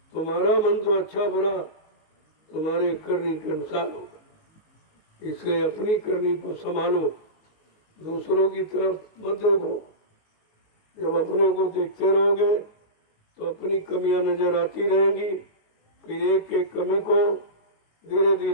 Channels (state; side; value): late; right; 18 ms